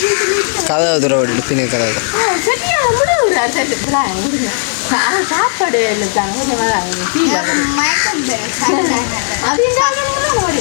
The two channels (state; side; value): silent; right; 71 dB below the other